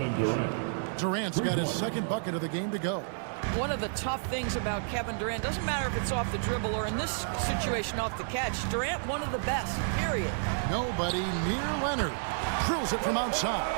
Durant's got his second bucket of the game to go. One of the tough things about Kevin Durant, doesn't matter if it's off the dribble or in this situation off the catch, Durant one of the best, period. Nobody near Leonard. Drills it from outside.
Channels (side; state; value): left; silent; digital silence